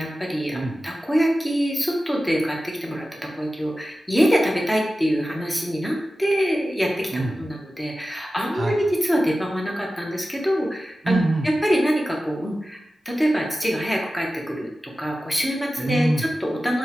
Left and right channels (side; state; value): both; normal; correlation 0.94